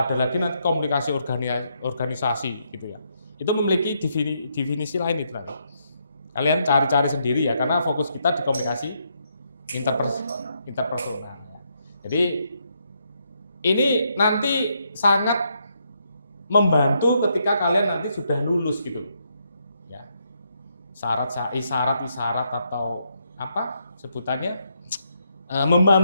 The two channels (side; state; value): both; inverted; correlation -0.77